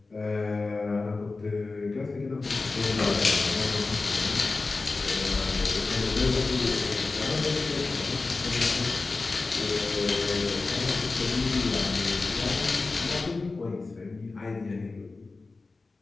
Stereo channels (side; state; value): right; quieter; 3.7 dB